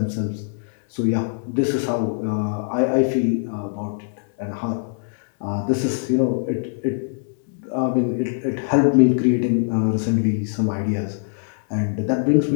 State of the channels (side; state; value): right; silent; digital silence